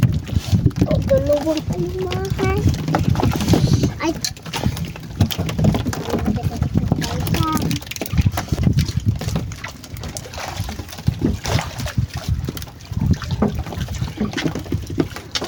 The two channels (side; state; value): both; identical; correlation 1.00